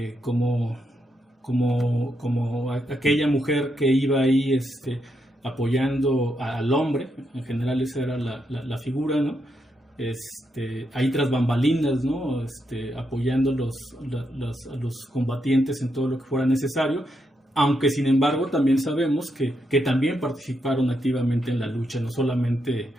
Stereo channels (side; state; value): both; normal; correlation 0.81